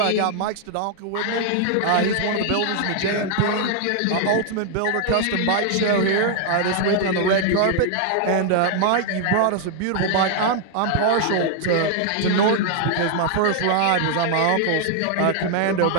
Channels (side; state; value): both; different; correlation 0.00